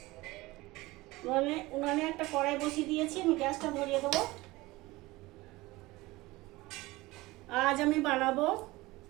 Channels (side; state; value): left; quieter; 20.4 dB